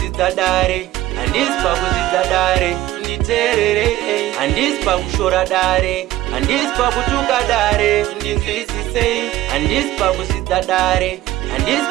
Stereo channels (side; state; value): left; quieter; 15.2 dB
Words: dare handisi pakuzvidza dare nditeerere handisi pakushora dare handisi pakutuka dare ndinzwisisei handisi pakuzvidza dare handisi